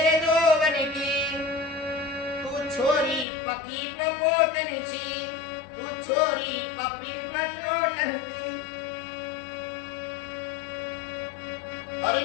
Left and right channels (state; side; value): drops out; right; at 3.2 s